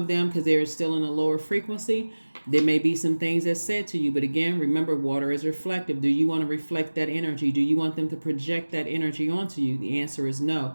them, because they're still in a lower frequency, there may be some things that's said to you. But again, remember, water is reflective. Do you want to reflect that energy? Do you want them to project that energy onto you? The answer is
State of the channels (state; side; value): inverted; both; correlation -1.00